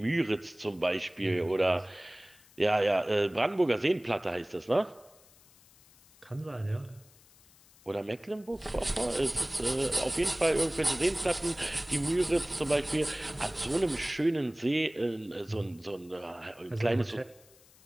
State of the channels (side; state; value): left; noise; hiss, 27 dB below the sound